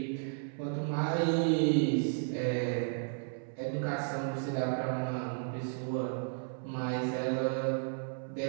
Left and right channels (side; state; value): left; silent; 55 dB below the other